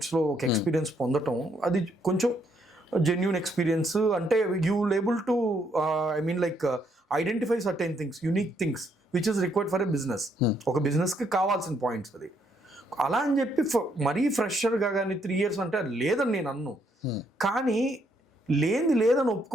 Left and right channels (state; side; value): normal; both; correlation 0.72